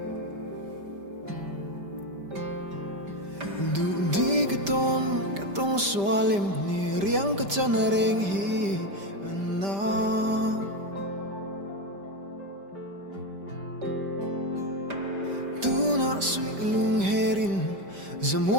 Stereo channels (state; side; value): late; left; 5.1 ms